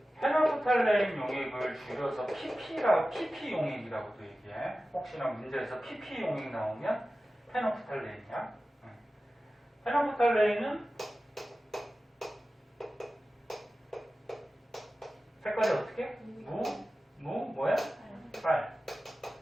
페놀프탈레인 용액을 줄여서 PP 용액이라고도 얘기해. 혹시나 문제에서 PP 용액 나오면 페놀프탈레인이야. 페놀프탈레인은 색깔이 어떻게? 뭐야? 빨.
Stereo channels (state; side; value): normal; both; correlation 0.95